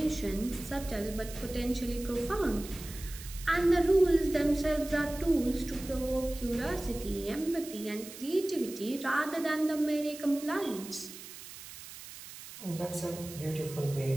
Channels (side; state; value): right; noise; hiss, 14 dB below the sound